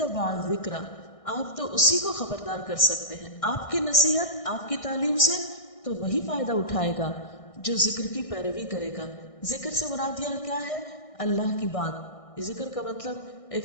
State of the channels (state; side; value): late; right; 1.6 ms